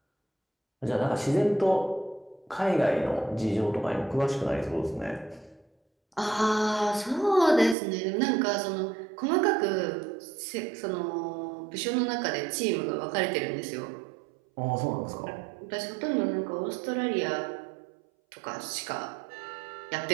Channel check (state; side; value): drops out; left; at 7.8 s